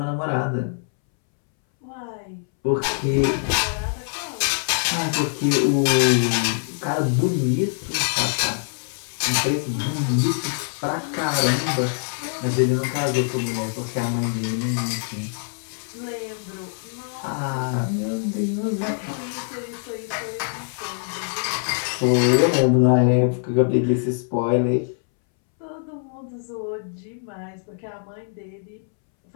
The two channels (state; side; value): silent; right; 63 dB below the other